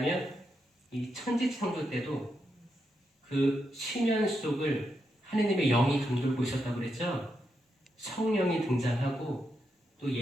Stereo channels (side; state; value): both; normal; correlation 0.83